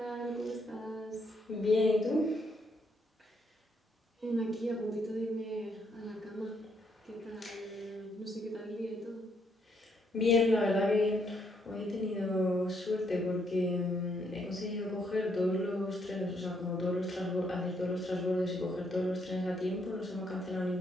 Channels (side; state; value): both; normal; correlation 0.74